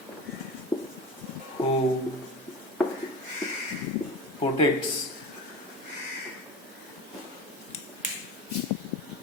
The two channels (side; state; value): both; normal; correlation 0.30